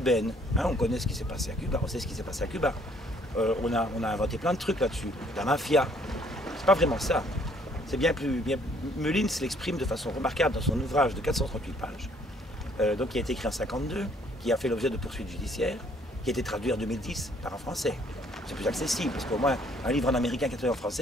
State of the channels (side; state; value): both; normal; correlation 0.63